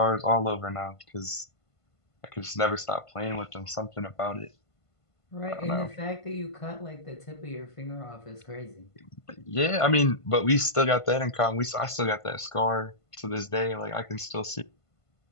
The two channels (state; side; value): late; right; 1.5 ms